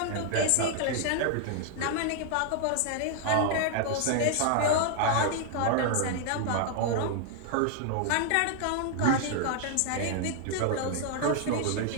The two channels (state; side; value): different; both; correlation 0.00